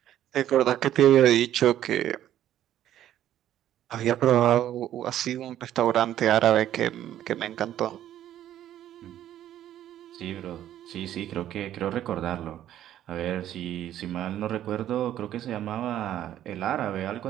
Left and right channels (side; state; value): left; quieter; 11.8 dB